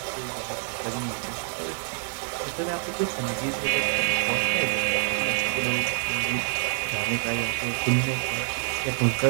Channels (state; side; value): silent; left; 60 dB below the other